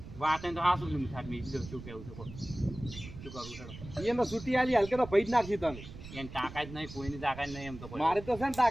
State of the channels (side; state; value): right; noise; rumble, 13 dB below the sound